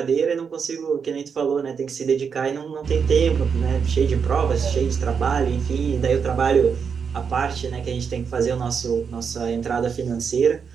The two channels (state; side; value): quieter; left; 6.3 dB